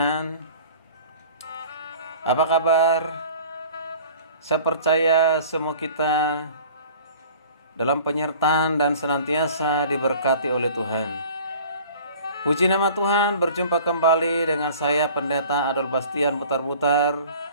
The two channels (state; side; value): inverted; both; correlation -0.46